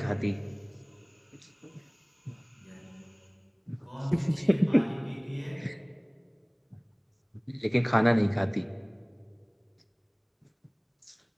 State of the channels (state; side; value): identical; both; correlation 1.00